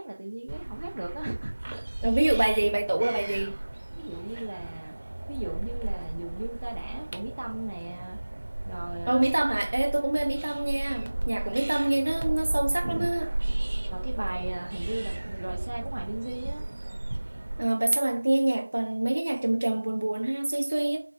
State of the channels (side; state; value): both; inverted; correlation -1.00